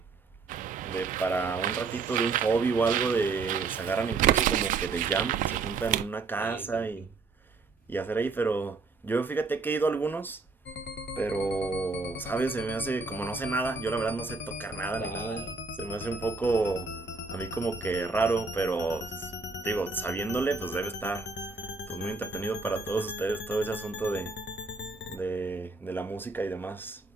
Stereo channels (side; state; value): left; quieter; 4.1 dB